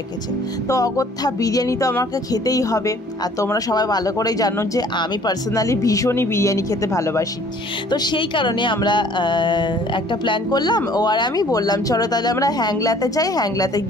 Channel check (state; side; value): normal; both; correlation 0.55